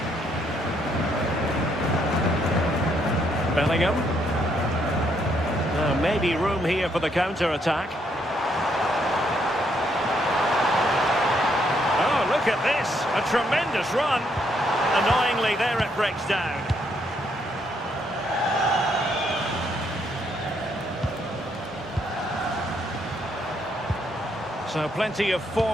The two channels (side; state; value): both; normal; correlation 0.73